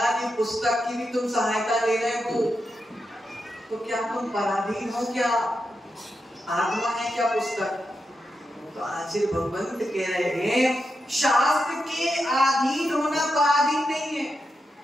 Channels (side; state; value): both; normal; correlation 0.87